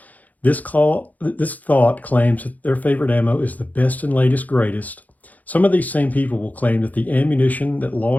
This thought claims that their favorite ammo is the best and latest greatest. Some of these same people will claim that the ammunition that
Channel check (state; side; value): late; right; 0.079 ms